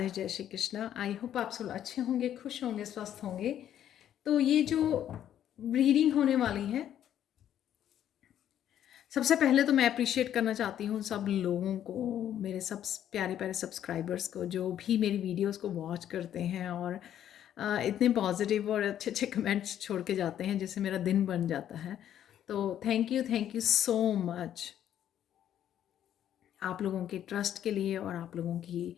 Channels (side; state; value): right; quieter; 10.6 dB